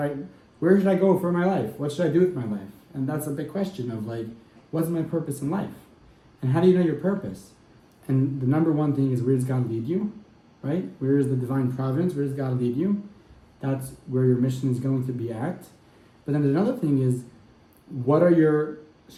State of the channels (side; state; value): both; identical; correlation 1.00